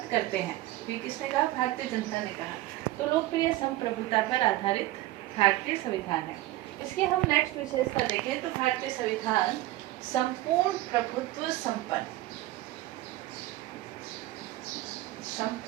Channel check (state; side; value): quieter; left; 16.8 dB